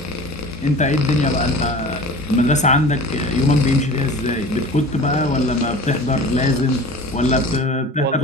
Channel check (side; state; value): both; normal; correlation 0.39